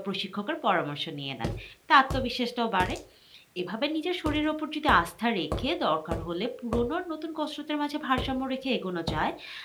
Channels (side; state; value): both; identical; correlation 1.00